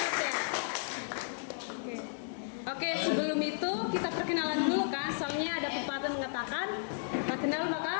ya. Oke, sebelum itu kita perkenalan dulu kan. Soalnya ada pepatah mengatakan tak kenal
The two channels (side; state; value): right; silent; digital silence